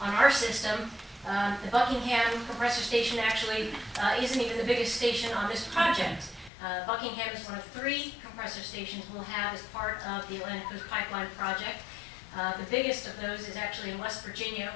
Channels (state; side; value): drops out; right; at 6.5 s